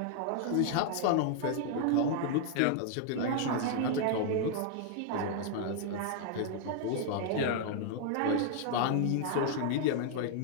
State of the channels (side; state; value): both; different; correlation -0.01